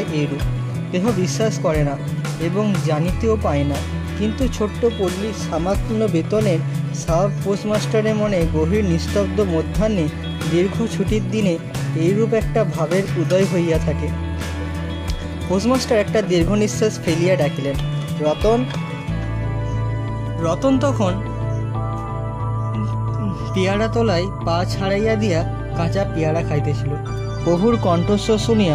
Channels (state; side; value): identical; both; correlation 1.00